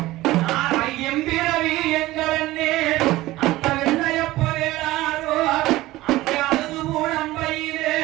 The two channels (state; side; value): quieter; left; 17.5 dB